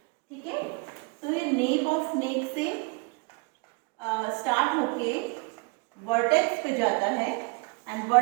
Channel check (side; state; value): left; quieter; 30.0 dB